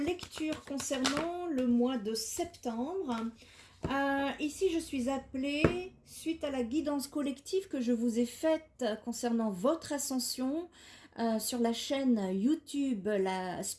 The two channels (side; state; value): both; identical; correlation 1.00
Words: concernant le mois de septembre. Ici, je suis appelée, suite à la guidance collective que je vous ai faite concernant votre ascension sur la chaîne YouTube La